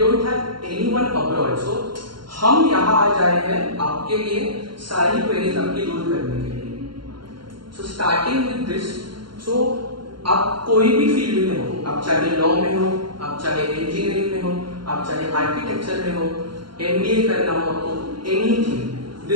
have anyone abroad. So हम यहाँ आ जाए हैं आपके लिए सारी क्वेरीज आपकी दूर करने के लिए। So starting with this, so आप कोई भी फील्ड में हो, आप चाहे लॉ में हो, आप चाहे इंजीनियरिंग में हो, आप चाहे आर्किटेक्चर में हो, MBA करना हो आपको, anything,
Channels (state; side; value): late; left; 0.73 ms